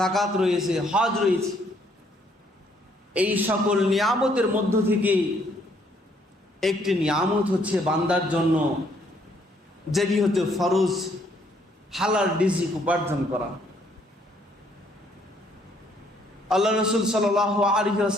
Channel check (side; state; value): both; normal; correlation 0.67